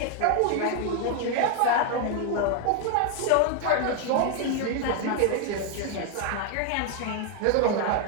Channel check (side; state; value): both; different; correlation 0.01